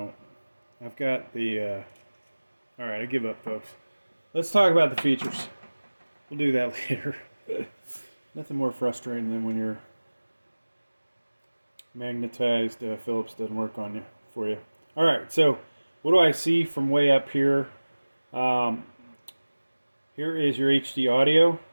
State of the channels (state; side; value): inverted; both; correlation -1.00